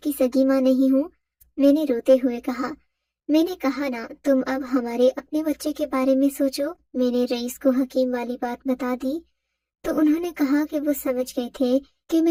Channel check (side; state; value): both; identical; correlation 1.00